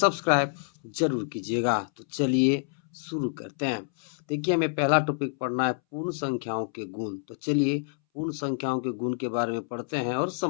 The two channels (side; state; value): right; silent; 60 dB below the other